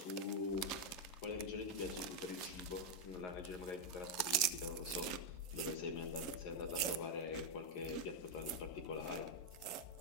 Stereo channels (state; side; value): late; right; 11 ms